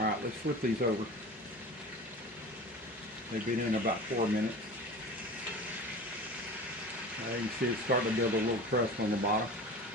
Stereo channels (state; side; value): normal; both; correlation 0.35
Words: let's flip these over. They've been in about 4 minutes. Now you can see it's starting to build a little crust on the bottom.